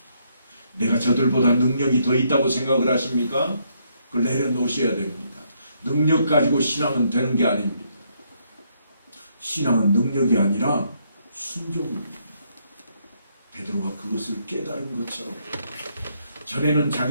내가 저들보다 능력이 더 있다고 생각을 하십니까? 그걸 내려놓으셔야 됩니다. 능력 가지고 신앙은 되는 게 아닙니다. 신앙은 능력이 아니라 순종입니다. 베드로가 그것을 깨달은 것처럼 전에는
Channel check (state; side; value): inverted; both; correlation -0.73